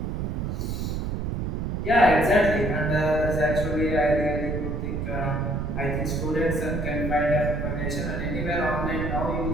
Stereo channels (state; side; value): noise; right; rumble, 2 dB below the sound